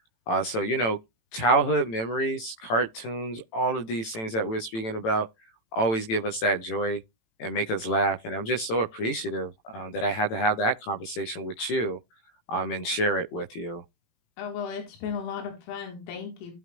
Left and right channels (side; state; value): right; late; 18 ms